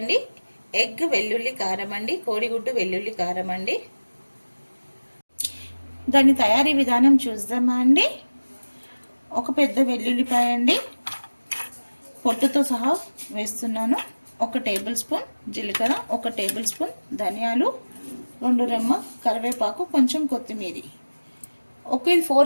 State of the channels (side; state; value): both; inverted; correlation -1.00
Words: ఎగ్ వెల్లుల్లి కారం అండి, కోడిగుడ్డు వెల్లుల్లి కారం అండి. దాని తయారీ విధానం చూద్దామా అండి. ఒక పెద్ద వెల్లుల్లిపాయ అండి, పొట్టుతో సహా వేస్తున్నాను. 1 టేబుల్ స్పూన్ జీలకర్ర, 1 టేబుల్ స్పూన్ ధనియాలు, 2 రెమ్మ కరివేపాకు, కొంచెం కొత్తిమీర. ఓకే,